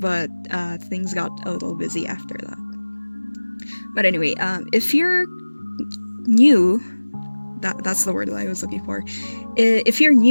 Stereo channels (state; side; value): inverted; both; correlation -1.00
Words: things got a little busy after that. But anyway, if you're new, that's the word that I was looking for. If you're